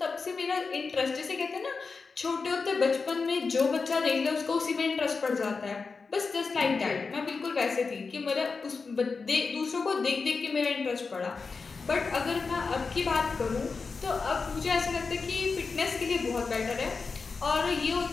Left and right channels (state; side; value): quieter; right; 4.6 dB